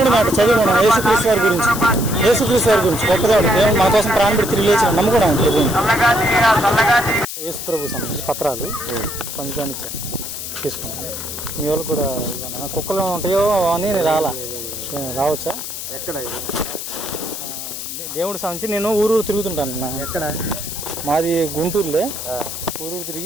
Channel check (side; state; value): left; noise; hiss, 7 dB below the sound